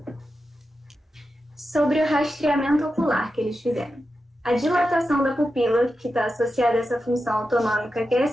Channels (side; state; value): both; normal; correlation 0.90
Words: Sobre o rastreamento ocular que eles fizeram. A dilatação da pupila, que está associada a essa função autonômica, que é